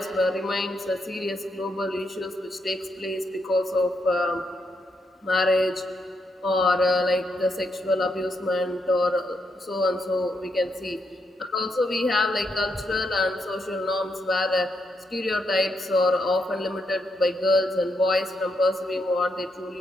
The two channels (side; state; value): both; normal; correlation 0.80